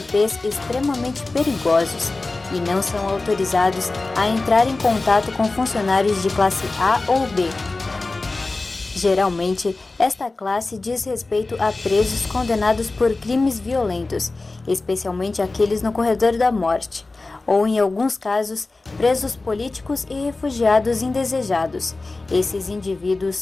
extremamente perigosos e não são autorizados a entrar em contato com funcionários de classe A ou B. Geralmente, esta classe diz respeito a presos condenados por crimes violentos, especialmente aqueles no corredor da morte, ou em alguns casos, presos políticos e refugiados indesejados. Esses indivíduos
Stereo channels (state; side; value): quieter; right; 3.4 dB